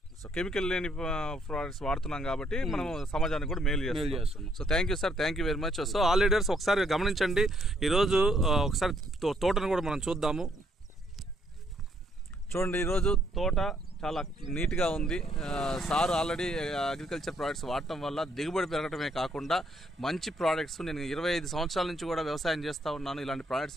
సో కెమికల్ లేని ప్రొడక్ట్స్ వాడుతున్నాం కాబట్టి మనం సమాజానికి కూడా మేలు చేస్తున్నాం. So thank you sir, thank you very much. So all leaders ఒకసారి గమనించండి, ఈరోజు ఒకసారి తోటను కూడా మనం చూద్దాము. చూడండి, ఈరోజు తోట చాలా నీట్గా ఉంది. సార్ ఆల్రెడీ అగ్రికల్చర్ ప్రోడక్ట్స్ వాడటం వల్ల దిగుబడి పెరగటమే కాకుండా మంచి ప్రోడక్ట్స్, నేను 25 సంవత్సరాల నుంచి కూడా వ్యవసాయం చేస్తూ ఉన్నాను, ఇలాంటి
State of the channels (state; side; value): normal; both; correlation 0.70